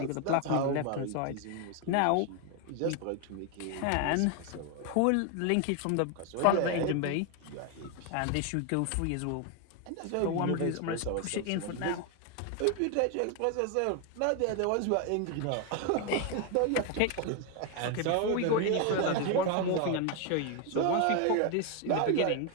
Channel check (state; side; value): different; both; correlation 0.01